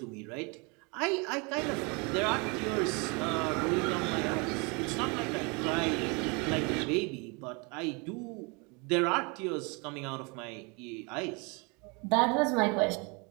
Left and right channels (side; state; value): left; quieter; 30.4 dB